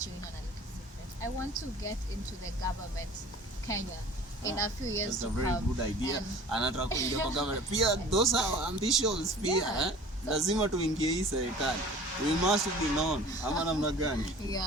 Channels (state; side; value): normal; both; correlation 0.44